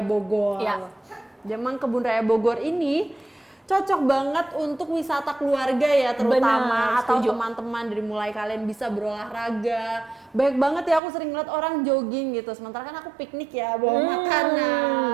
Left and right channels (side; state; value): left; drops out; at 11.0 s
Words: Bogor. Iya. Memang Kebun Raya Bogor ini cocok banget untuk wisata keluarga ya, terutama atau teman-teman, dari mulai kalian bisa berolahraga. Banyak banget ya, aku sering ngeliat orang jogging gitu, sementara kan aku piknik ya, bawa makanan,